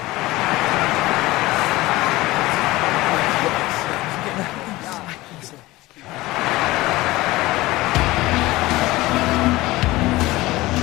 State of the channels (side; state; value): right; quieter; 19.2 dB